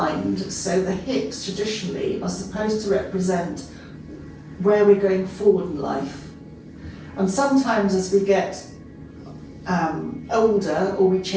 So the hips traditionally are supposed to represent where we're going forward in life. And sometimes as we get older, or we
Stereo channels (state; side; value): identical; both; correlation 1.00